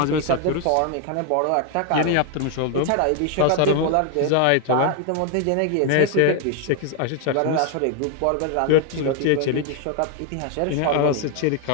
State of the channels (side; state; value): both; different; correlation 0.01